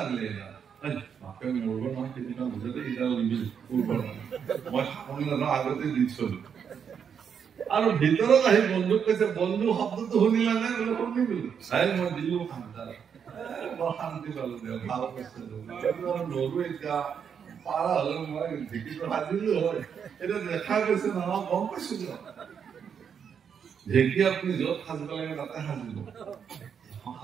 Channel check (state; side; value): quieter; left; 7.3 dB